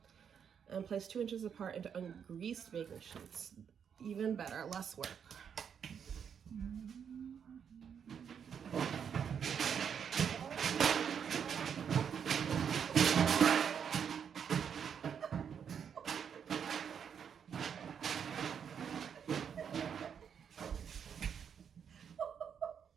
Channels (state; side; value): quieter; left; 7.6 dB